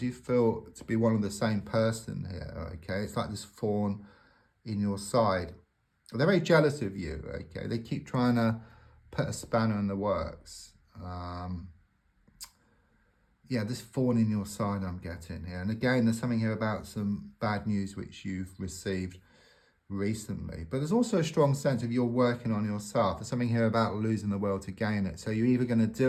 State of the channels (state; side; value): identical; both; correlation 1.00